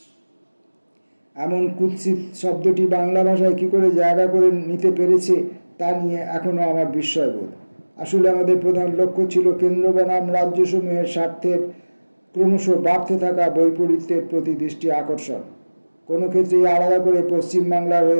এমন কুৎসিত শব্দটি বাংলা ভাষায় কী করে জায়গা করে নিতে পেরেছে তা নিয়ে এখনও আমার বিস্ময়বোধ। আসলে আমাদের প্রধান লক্ষ্য ছিল কেন্দ্র বনাম রাজ্যসমূহের স্বার্থের ক্রমশ বাড়তে থাকা বৈপরীত্যের প্রতি দৃষ্টি আকর্ষণ। কোনো ক্ষেত্রেই আলাদা করে পশ্চিমবাংলার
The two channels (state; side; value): inverted; both; correlation -1.00